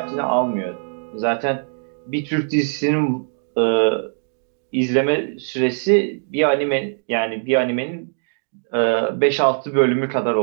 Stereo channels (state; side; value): silent; left; digital silence